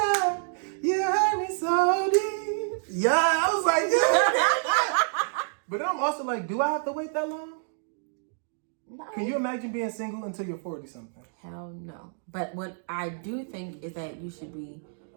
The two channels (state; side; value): silent; left; digital silence